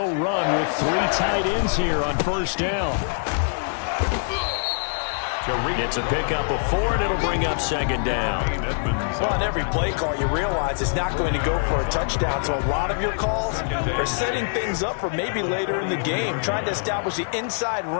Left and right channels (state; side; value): silent; right; 63 dB below the other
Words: run with 3 tight ends here on first down. It's a pickup of 4, and it'll bring up second down. Well, on every play call, you realize it's not going to go for a touchdown. So a lot of your calls are setting things up for maybe later in the game, trying to establish the inside